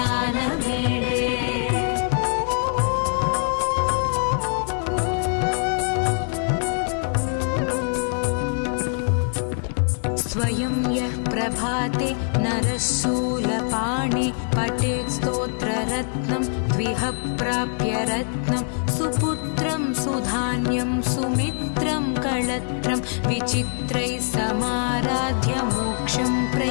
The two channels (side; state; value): right; silent; 63 dB below the other